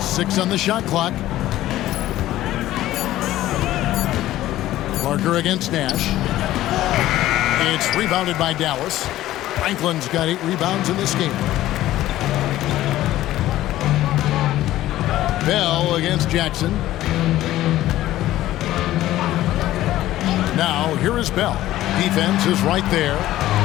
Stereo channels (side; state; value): right; quieter; 14.7 dB